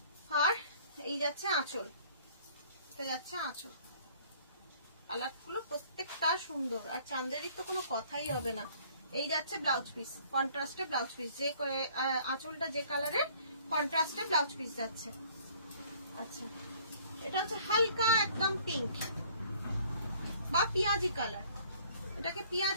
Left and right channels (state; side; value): inverted; both; correlation -0.56